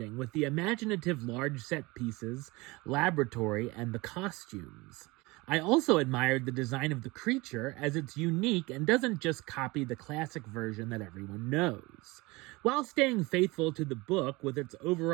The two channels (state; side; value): quieter; left; 23.1 dB